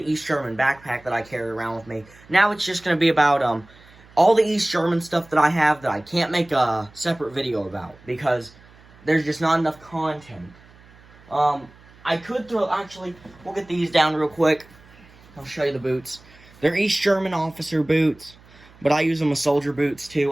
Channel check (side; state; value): right; noise; hum, 25 dB below the sound